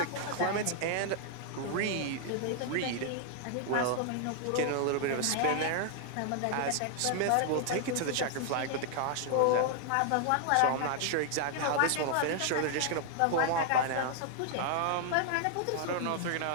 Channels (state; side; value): different; both; correlation 0.00